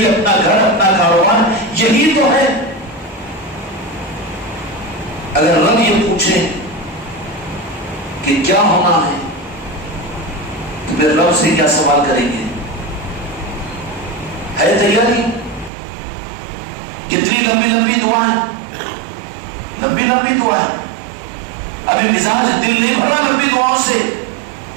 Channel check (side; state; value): left; drops out; at 15.7 s